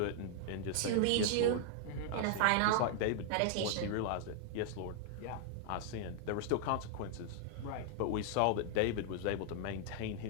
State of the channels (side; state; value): both; different; correlation -0.01